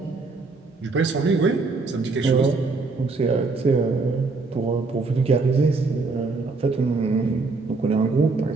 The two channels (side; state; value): left; quieter; 3.9 dB